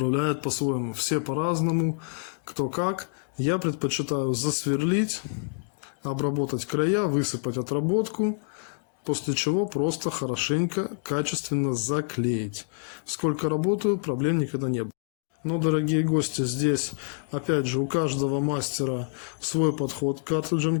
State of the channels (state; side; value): silent; right; digital silence